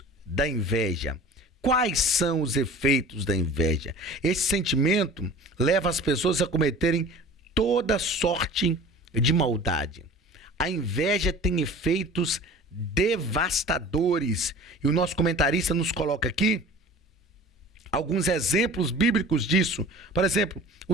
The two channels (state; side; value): normal; both; correlation 0.41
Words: da inveja. Quais são os efeitos da inveja? Esse sentimento leva as pessoas a cometerem toda sorte de maldade. A inveja tem efeitos devastadores. E o nosso comentarista nos coloca aqui alguns exemplos bíblicos disso. Por exemplo,